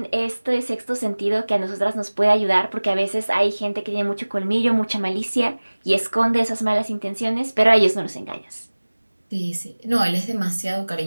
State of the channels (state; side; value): inverted; both; correlation -1.00